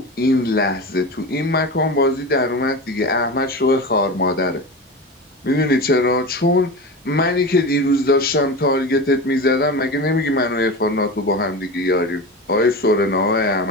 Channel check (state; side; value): normal; both; correlation 0.26